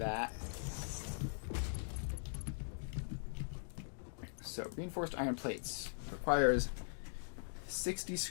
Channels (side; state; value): right; silent; digital silence